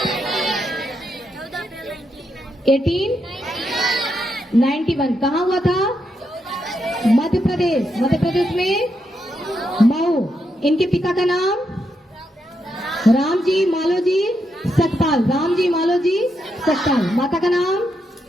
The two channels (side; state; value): both; normal; correlation 0.82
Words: 1891। कहाँ हुआ था? मध्य प्रदेश में मऊ। इनके पिता का नाम? रामजी मालोजी सकपाल, रामजी मालोजी सकपाल। माता का नाम?